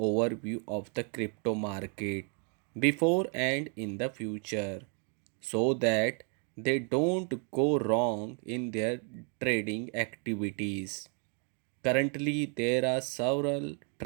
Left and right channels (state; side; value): quieter; left; 39.9 dB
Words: of the crypto market before and in the future so that they don't go wrong in their trading activities. Currently, there are several